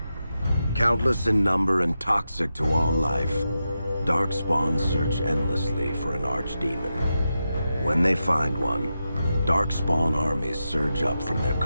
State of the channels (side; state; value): both; inverted; correlation -0.89